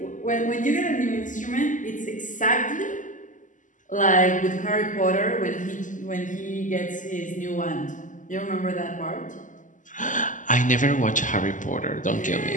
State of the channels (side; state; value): right; late; 0.37 ms